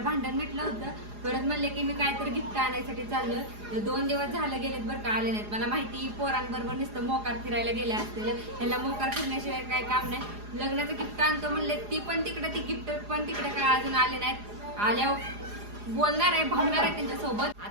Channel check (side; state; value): left; late; 4.8 ms